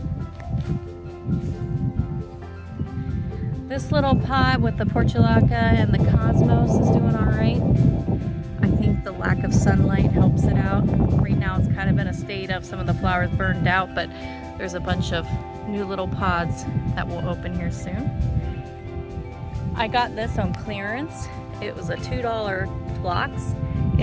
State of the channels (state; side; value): identical; both; correlation 1.00